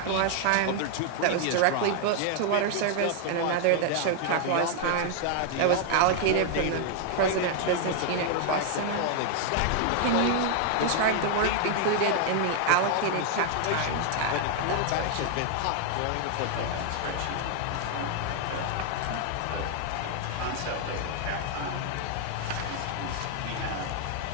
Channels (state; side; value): different; both; correlation 0.00